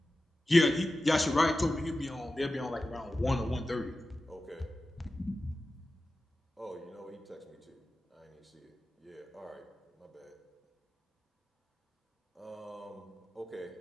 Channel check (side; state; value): both; normal; correlation 0.94